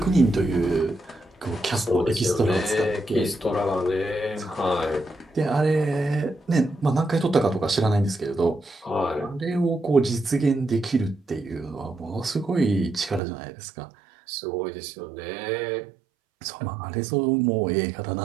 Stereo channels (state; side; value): drops out; left; at 13.2 s